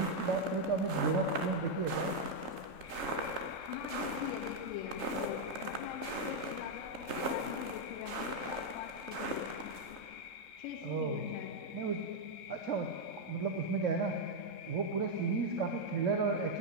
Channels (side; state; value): right; late; 3.3 ms